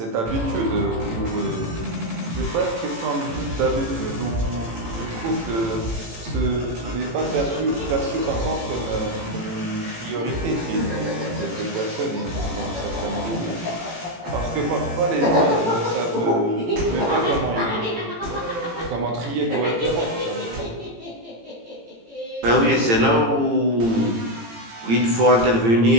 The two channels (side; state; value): left; late; 18 ms